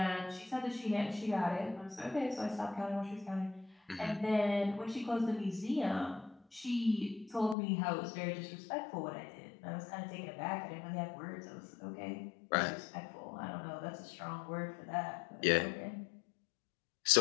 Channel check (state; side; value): drops out; right; at 7.6 s